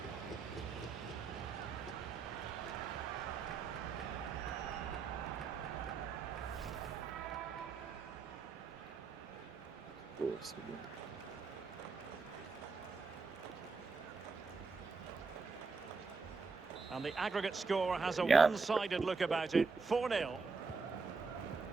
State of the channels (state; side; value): quieter; left; 4.6 dB